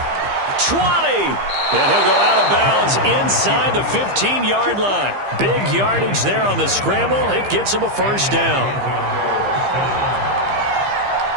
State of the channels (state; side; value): late; left; 15 ms